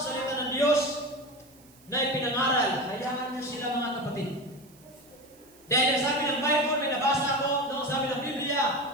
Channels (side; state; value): right; noise; hiss, 27 dB below the sound